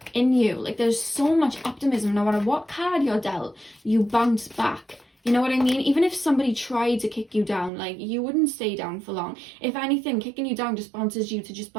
in you. Like, there's so much optimism. No matter what card you're dealt, you bounce back. You know what I mean? Even if somebody tried to kick you down, like, you wouldn't stay down for long. If anything, kicking you down just bounces you to just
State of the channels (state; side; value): drops out; left; at 7.7 s